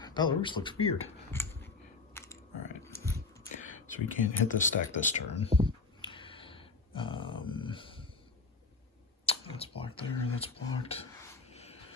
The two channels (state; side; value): quieter; right; 4.1 dB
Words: Belarus looks weird. All right. So we can't hit this stack this turn. That's blocked there, that's blocked.